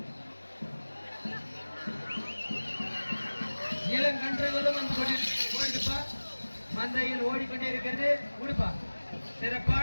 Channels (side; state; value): both; inverted; correlation -1.00